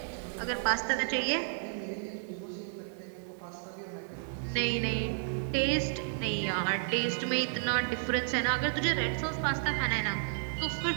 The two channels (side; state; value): left; silent; digital silence